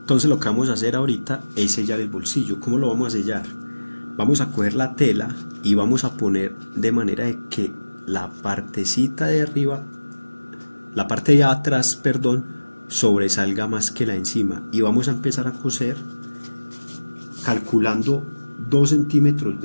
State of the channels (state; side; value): inverted; both; correlation -1.00